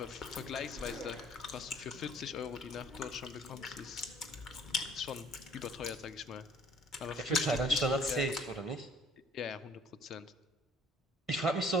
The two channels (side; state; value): both; normal; correlation 0.56